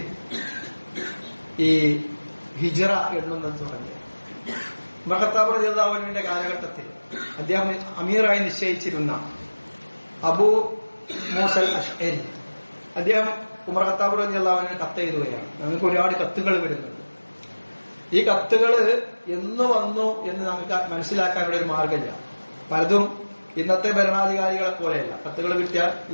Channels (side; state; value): both; inverted; correlation -1.00